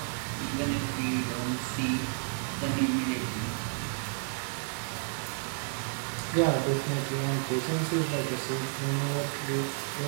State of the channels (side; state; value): left; silent; 57 dB below the other